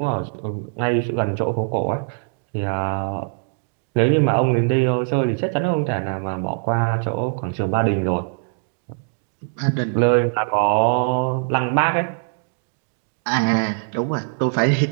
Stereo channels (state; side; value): silent; left; digital silence